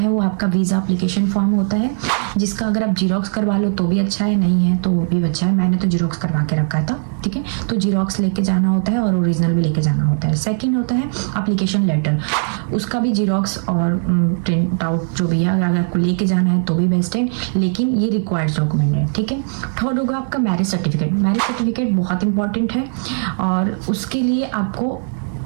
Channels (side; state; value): left; silent; 67 dB below the other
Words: वो आपका वीजा एप्लीकेशन फॉर्म होता है, जिसका अगर आप जीरोक्स करवा लो तो भी अच्छा है, नहीं है तो वो भी अच्छा है। मैंने तो जीरोक्स करवा के रखा था, ठीक है। तो जीरोक्स लेके जाना होता है और ओरिजिनल भी लेके जाना होता है। सेकंड होता है एप्लीकेशन लेटर, उसका भी जीरोक्स और प्रिंट आउट जो भी है अगर आपको लेके जाना है तो भी बेस्ट है, लेकिन ये रिक्वायर्ड डॉक्यूमेंट है, ठीक है। थर्ड होगा आपका मैरिज सर्टिफिकेट। मैरिज सर्टिफिकेट बहुत इंपॉर्टेंट है और उसके लिए आपको